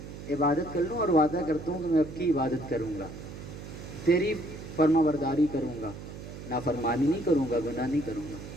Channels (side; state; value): right; noise; hum, 12 dB below the sound